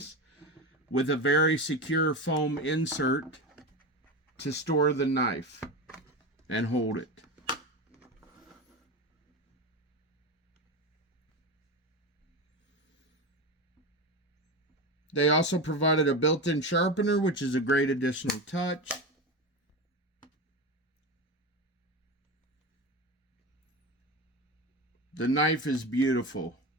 with a very secure foam insert to store the knife and hold it. They also provided a built-in sharpener, which is a great additional touch. The knife is beautiful.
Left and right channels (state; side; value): normal; both; correlation 0.22